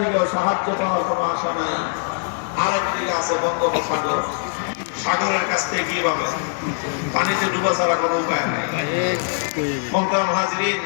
থেকেও সাহায্য পাওয়ার কোনো আশা নাই। আরেকদিকে আছে বঙ্গোপসাগর, সাগরের কাছ থেকে কি পাবে? পানিতে ডুবা ছাড়া কোনো উপায় নাই। মোহতারাম হাজরিন,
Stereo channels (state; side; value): silent; right; 64 dB below the other